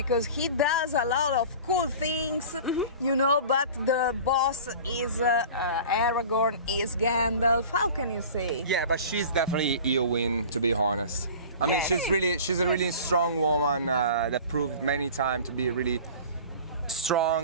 he does a lot of cool things, but the boss is Aragorn, is Gandalf. How can you say? Yeah, but she's definitely Eowyn, to be honest. I mean, Yes. she's a really strong woman that proved many times to be really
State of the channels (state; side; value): inverted; both; correlation -0.39